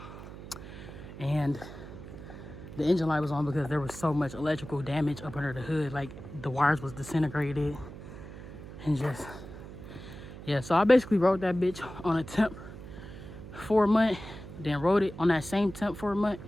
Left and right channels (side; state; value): right; noise; hum, 13 dB below the sound